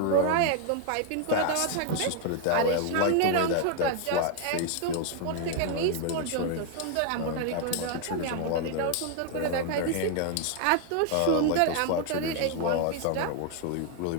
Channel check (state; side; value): different; both; correlation 0.00